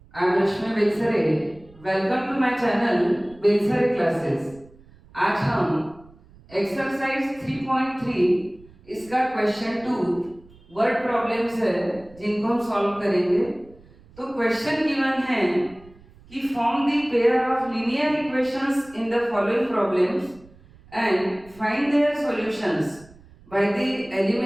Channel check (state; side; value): noise; right; rumble, 25 dB below the sound